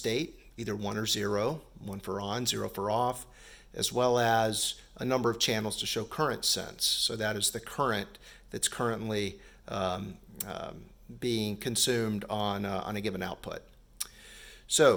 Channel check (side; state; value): both; identical; correlation 1.00